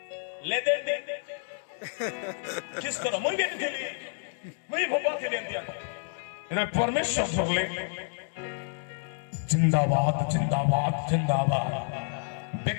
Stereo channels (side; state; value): right; silent; 58 dB below the other